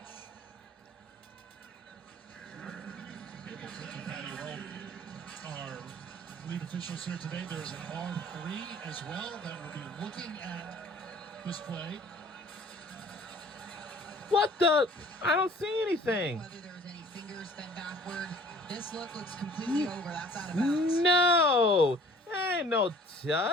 Our lead officials here today. There's an R3 as well that will be looking at this play. What the? I don't see anything. Whether there was any fingers bent backward, this look looks completely over. That's out of bounds. No, ain't no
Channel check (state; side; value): normal; both; correlation 0.52